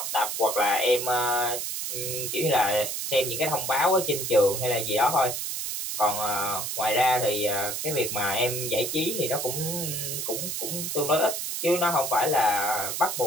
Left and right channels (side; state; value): right; noise; hiss, 3 dB below the sound